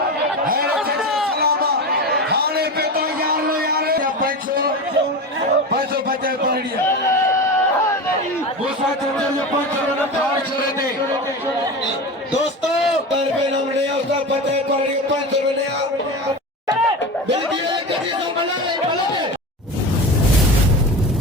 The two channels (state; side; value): normal; both; correlation 0.26